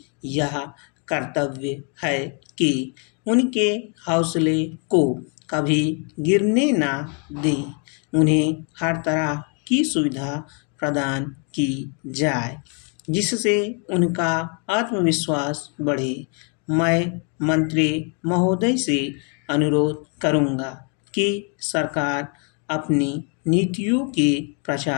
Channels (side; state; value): right; quieter; 38.8 dB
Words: यह कर्तव्य है कि उनके हौसले को कभी गिरने ना दें। उन्हें हर तरह की सुविधा प्रदान की जाए, जिससे उनका आत्मविश्वास बढ़े। मैं मंत्री महोदय से अनुरोध करूंगा कि सरकार अपनी नीतियों के